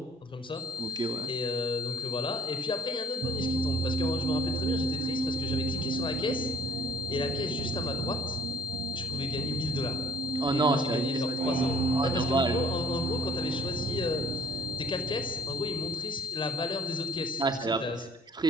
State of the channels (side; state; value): both; normal; correlation 0.58